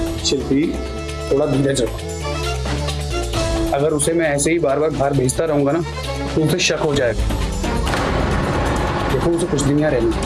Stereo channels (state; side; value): identical; both; correlation 1.00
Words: शिल्पी, थोड़ा धीरज रखो। अगर उसे मैं ऐसे ही बार बार बाहर भेजता रहूंगा ना तो उसे शक हो जाएगा। देखो उसे कुछ दिन यहाँ